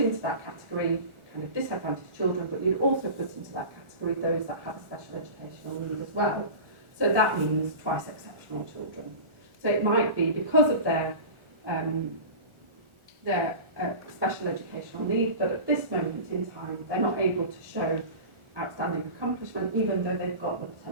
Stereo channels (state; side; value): late; left; 1.4 ms